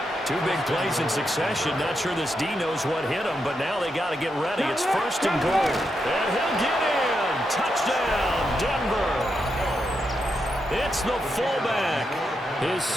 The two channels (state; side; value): normal; both; correlation 0.84